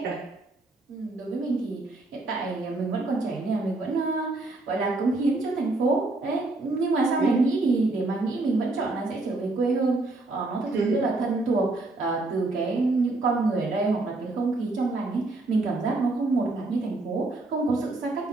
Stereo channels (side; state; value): left; quieter; 3.0 dB